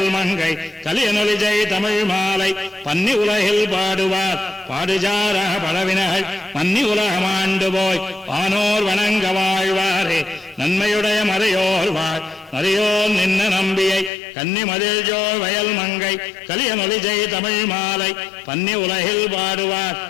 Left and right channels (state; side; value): drops out; right; at 14.1 s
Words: மங்கை கலியனொலிஜை தமிழ் மாலை பன்னி உலகில் பாடுவார் பாடுஜார பழவினகள் மன்னி உலகமாண்டு போய் வானோர் வணங்க வாழ்வாரே நன்மையுடைய மறையோர் வாழ் நரையோர் நின்ன நம்பியை கன்னி மதில் ஜோ வயல் மங்கை கலியனொலிஜை தமிழ் மாலை பன்னி உலகில் பாடுவார்